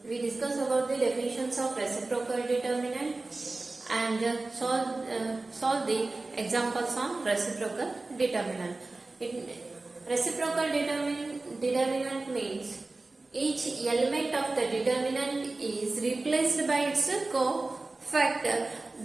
we discussed about the definitions of reciprocal determinant and solve the examples on reciprocal determinant. Reciprocal determinant means each element of the determinant is replaced by its cofactor.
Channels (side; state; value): left; quieter; 3.3 dB